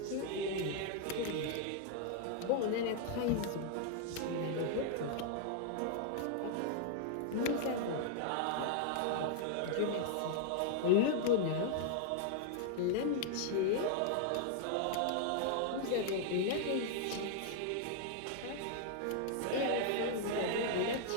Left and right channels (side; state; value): both; different; correlation -0.01